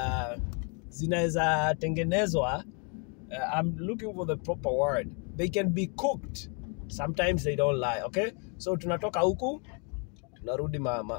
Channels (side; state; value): right; quieter; 37.0 dB